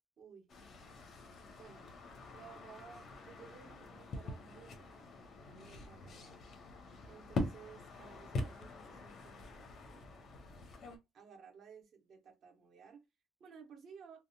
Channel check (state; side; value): normal; both; correlation 0.71